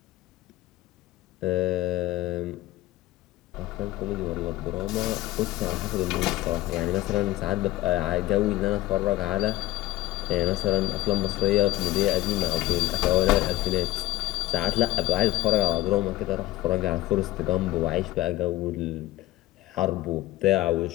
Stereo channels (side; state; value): right; quieter; 17.1 dB